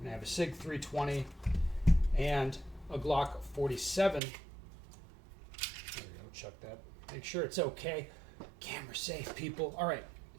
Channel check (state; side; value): drops out; left; at 4.2 s